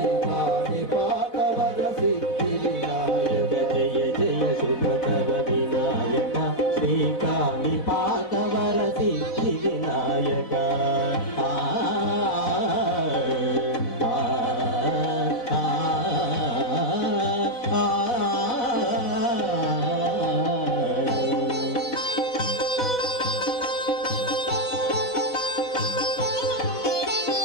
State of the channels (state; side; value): late; right; 4.0 ms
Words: పాదవరసి వినాయక జయ జయ శుభకర వినాయక శ్రీకాళి పాదవరసి వినాయక